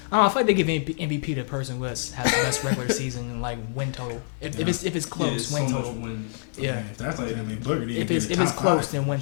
I feel like they give MVP to the person who has the best regular season and like win total. If it's close, Yeah, win so total. much wins. Yeah. If that's like, I mean, Booker didn't If get it's the if it's top close, five. then win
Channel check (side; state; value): right; silent; digital silence